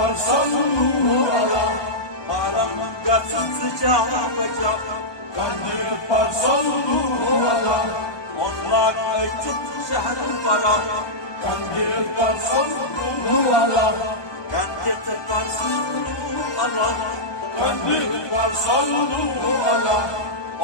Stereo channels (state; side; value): late; right; 1.2 ms